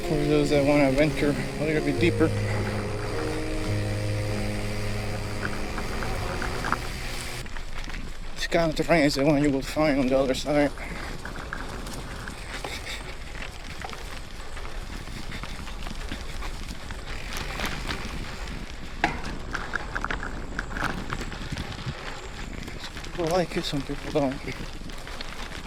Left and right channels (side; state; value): both; identical; correlation 1.00